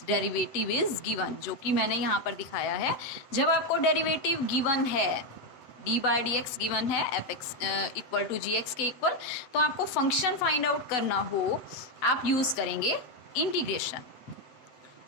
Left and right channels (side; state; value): right; late; 8.0 ms